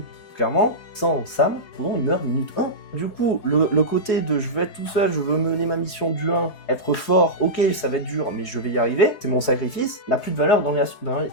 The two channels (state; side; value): late; right; 4.7 ms